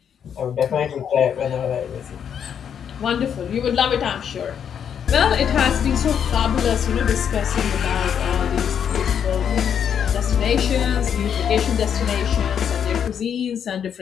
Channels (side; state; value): right; quieter; 8.2 dB